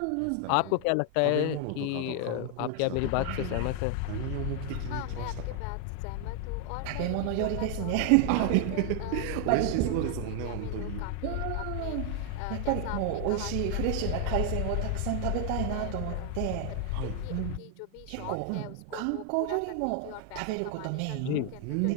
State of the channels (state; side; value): different; both; correlation 0.00